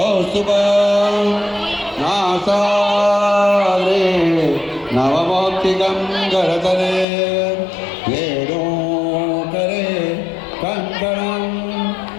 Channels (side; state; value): right; drops out; at 7.1 s